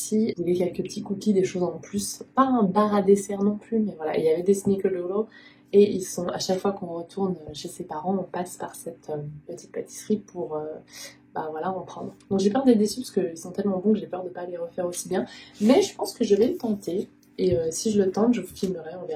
il y avait quelques petits cookies, des choses en plus. Pas un bar à dessert non plus, mais voilà, il y avait des snickerdoodle. Et ils sont, à chaque fois qu'on retourne chez ses parents, on passe par cette petite pâtisserie pour voilà, en prendre. Donc j'ai peur d'être déçue parce qu'ils sont tellement bons que j'ai peur de ne pas les refaire aussi bien. Mais je pense que je vais le tenter. Et si je le tente, je vous filmerai, on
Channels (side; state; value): both; identical; correlation 1.00